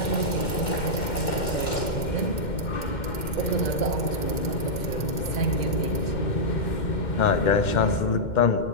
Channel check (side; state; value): right; late; 2.1 ms